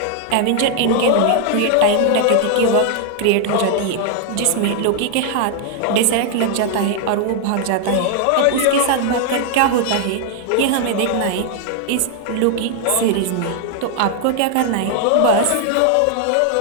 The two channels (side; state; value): both; different; correlation 0.00